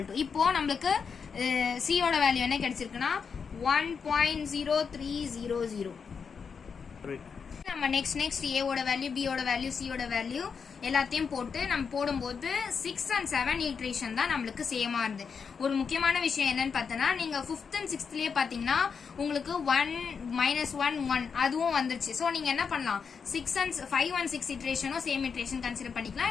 டு இப்போ நம்மளுக்கு சியோட வேல்யூ என்ன கிடைச்சிருக்குன்னா 1.0300. நம்ம நெக்ஸ்ட் ஏவோட வேல்யூ, பியோட வேல்யூ, சியோட வேல்யூ எல்லாத்தையும் போட்டு நம்ம போடும்போது 6 and 7 ஈட்ரேஷன் தான் நம்மளுக்கு சேமா இருந்து. ஒரு முக்கியமான விஷயம் என்னன்னு பார்த்தோன்னா, நீங்க 5th and 6thலயே பாத்தீங்கன்னா உங்களுக்கு 1 -1 1 அதுவும் வந்துருச்சு. ஸோ நீங்க என்ன பண்ணலாம், 5 and 6 இட்ரேஷனும் சேம் இட்ரேஷன் கன்சிடர் பண்ணிக்கலாம்,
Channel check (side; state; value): right; quieter; 6.0 dB